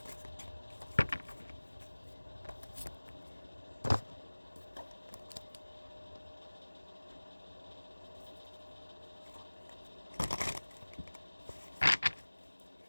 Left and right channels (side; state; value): both; inverted; correlation -1.00